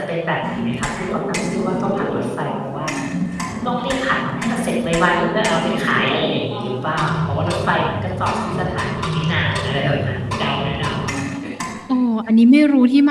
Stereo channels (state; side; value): identical; both; correlation 1.00